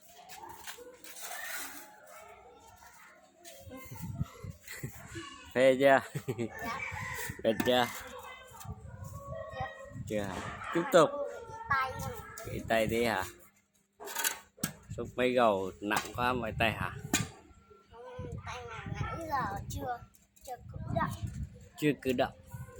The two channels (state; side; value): identical; both; correlation 1.00